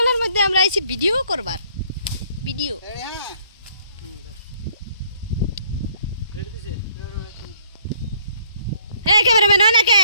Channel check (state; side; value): inverted; both; correlation -0.63